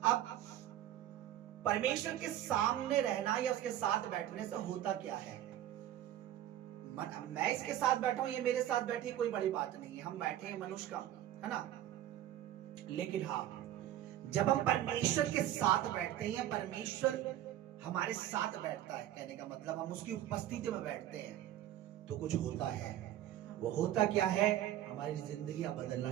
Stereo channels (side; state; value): left; quieter; 12.5 dB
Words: अब परमेश्वर के सामने रहना या उसके साथ बैठने से होता क्या है? मैं इसके साथ बैठा हूं, ये मेरे साथ बैठी, कोई बड़ी बात नहीं है, हम बैठे हैं, मनुष्य का है ना। लेकिन हाँ, जब हम परमेश्वर के साथ बैठते हैं, परमेश्वर हमारे साथ बैठता है, कहने का मतलब हम उसकी उपस्थिति में बैठते हैं, तो कुछ होता है। वो होता क्या है? हमारी जिंदगी बदलना